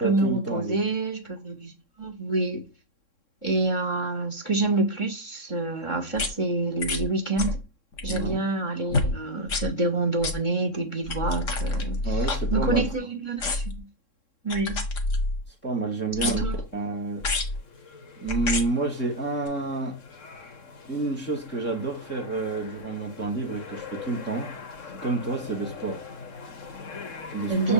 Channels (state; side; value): late; right; 3.7 ms